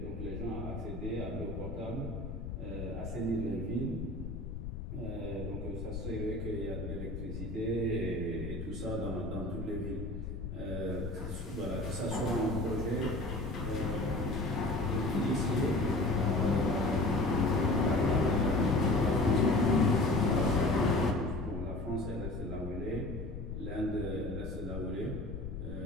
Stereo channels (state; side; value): noise; left; rumble, 7 dB below the sound